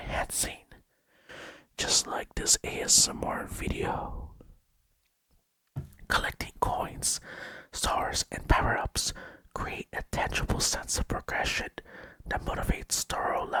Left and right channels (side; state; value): both; identical; correlation 1.00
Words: Just like this ASMR video. Collecting coins, stars, and power-ups create a tangible sense of progression that motivates thorough